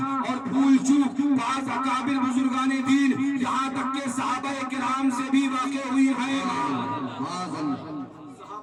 اور بھول چوک بعض اکابر بزرگان دین یہاں تک کہ صحابہ کرام سے بھی واقع ہوئی ہیں.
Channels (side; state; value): both; identical; correlation 1.00